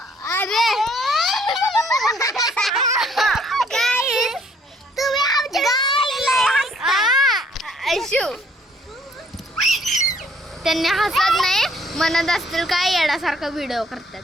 त्यांनी हसत नाही म्हणत असतील काय येण्यासारखा व्हिडिओ करतात.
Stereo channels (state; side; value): normal; both; correlation 0.63